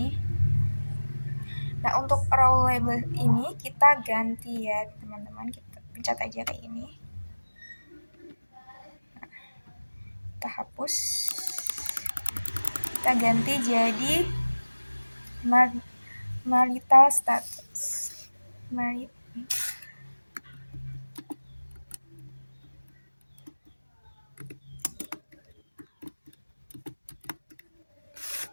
Nah, untuk row label ini kita ganti ya teman-teman. Kita pencet aja kayak ini. Nah, kita hapus. Kita ganti jadi marital status.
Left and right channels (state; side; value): inverted; both; correlation -1.00